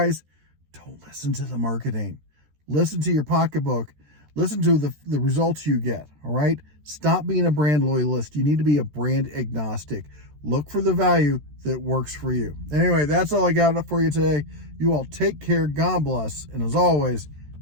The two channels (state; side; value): late; left; 13 ms